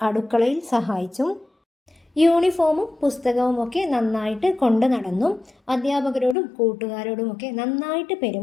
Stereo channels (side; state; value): right; drops out; at 6.4 s